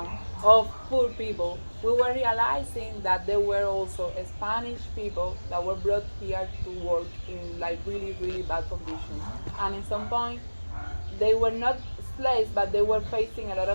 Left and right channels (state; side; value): inverted; both; correlation -1.00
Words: of poor people, we were realizing that there were also Spanish people that were brought here to work in like really, really bad conditions. And in some point, they were not slaves, but they were facing a lot